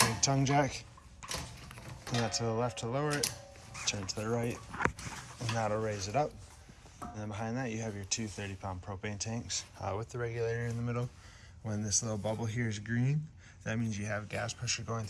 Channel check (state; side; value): identical; both; correlation 1.00